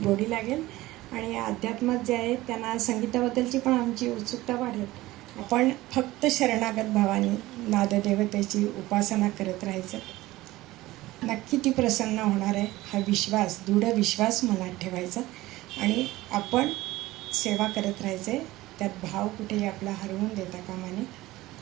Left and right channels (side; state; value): left; quieter; 17.9 dB